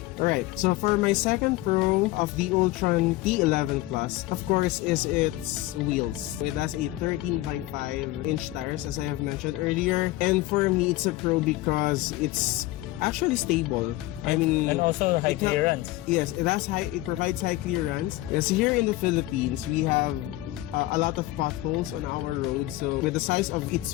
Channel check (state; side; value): quieter; right; 17.8 dB